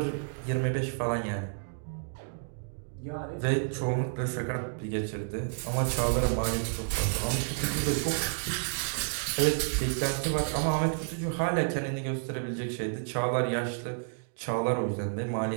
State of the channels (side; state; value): left; silent; digital silence